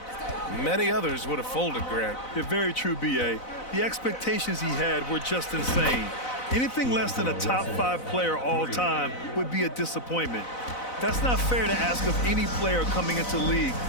Many others would have folded, Grant. You're very true, B.A. The expectations he had were just insane. Anything less than a top 5 player all time would be a disappointment. That's not fair to ask of any player coming into the league,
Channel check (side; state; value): right; late; 4.0 ms